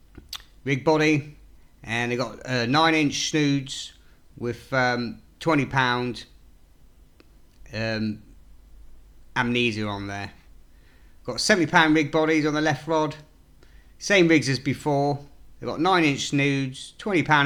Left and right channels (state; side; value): identical; both; correlation 1.00